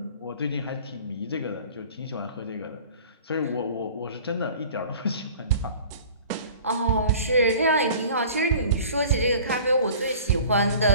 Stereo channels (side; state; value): both; inverted; correlation -0.45